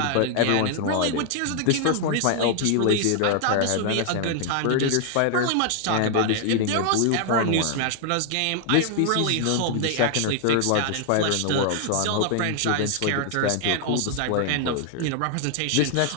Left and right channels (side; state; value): both; different; correlation 0.00